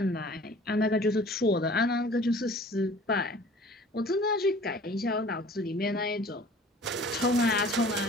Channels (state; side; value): normal; both; correlation 0.48